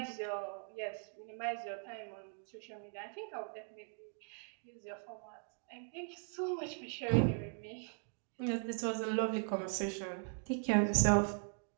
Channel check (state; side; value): silent; left; 51 dB below the other